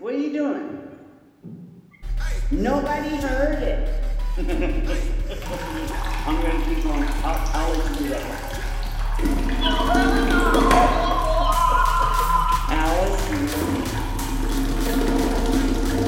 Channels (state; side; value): identical; both; correlation 1.00